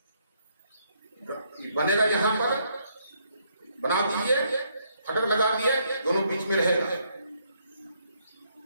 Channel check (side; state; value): both; inverted; correlation -0.72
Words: बनेगा यहां पर, बना दीजिए, फटक लगा दिए, दोनों बीच में रहेगा।